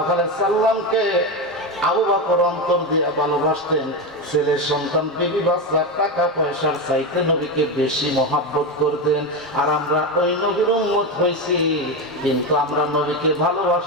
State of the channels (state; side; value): normal; both; correlation 0.15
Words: আলাইহি সাল্লামকে আবু বকর অন্তর দিয়ে ভালোবাসতেন। ছেলে সন্তান, বিবি বাচ্চা, টাকা পয়সার চাইতে নবীকে বেশি মহব্বত করতেন। আর আমরা ওই নবীর উম্মত হইছি, কিন্তু আমরা নবীকে